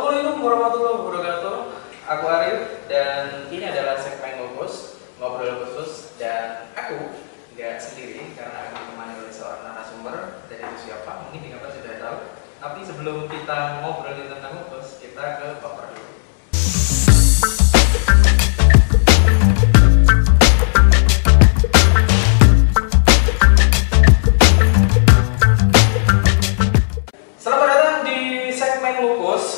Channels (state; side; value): silent; right; digital silence